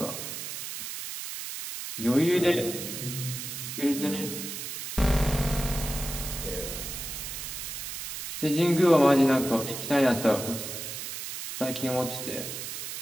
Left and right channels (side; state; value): right; noise; hiss, 7 dB below the sound